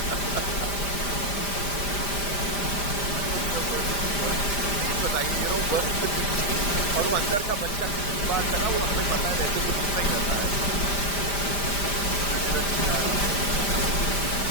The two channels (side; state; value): right; late; 5.0 ms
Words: Anupam sir, first things first, please बताइए, you know, working with this team, और वो अंदर का बच्चा कितनी बार जगा, वो हमें पता है, वैसे तो दिखता ही रहता है आए दिन। इन्होंने मेरा जीना आराम कर दिया था।